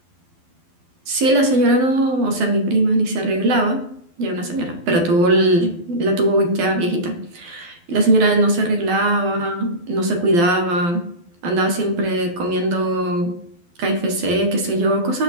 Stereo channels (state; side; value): late; left; 12 ms